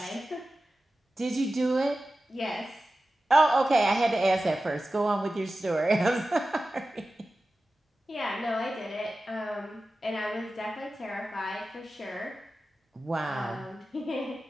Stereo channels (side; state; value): both; normal; correlation 0.94